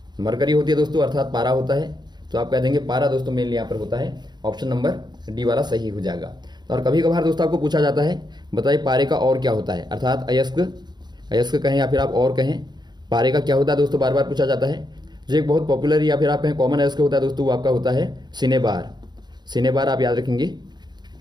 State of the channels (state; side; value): late; left; 0.21 ms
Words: मरकरी होती है दोस्तों, अर्थात पारा होता है। तो आप कह देंगे पारा दोस्तों मेनली यहाँ पर होता है। ऑप्शन नंबर डी वाला सही हो जाएगा। और कभी कभार दोस्तों आपको पूछा जाता है बताइए पारे का और क्या होता है, अर्थात अयस्क कहें या फिर आप और कहें, पारे का क्या होता है दोस्तों, बार बार पूछा जाता है। जो एक बहुत पॉपुलर या फिर आप कहें कॉमन अयस्क होता है दोस्तों, वो आपका होता है सिनेबार आप याद रखेंगे,